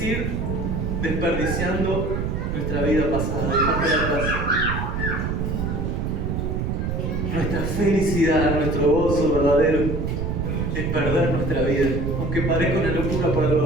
ir desperdiciando nuestra vida pasada. Nuestra felicidad, nuestro gozo verdadero es perder nuestra vida, aunque parezca una locura por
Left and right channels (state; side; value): noise; right; rumble, 1 dB below the sound